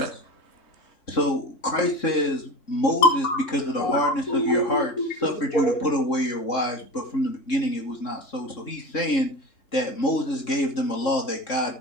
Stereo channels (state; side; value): late; right; 3.7 ms